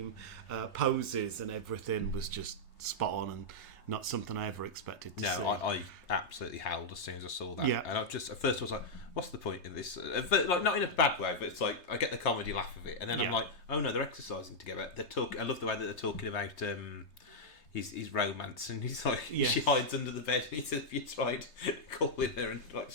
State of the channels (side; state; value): right; late; 3.3 ms